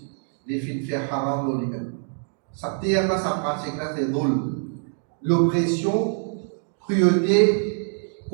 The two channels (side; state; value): left; silent; 61 dB below the other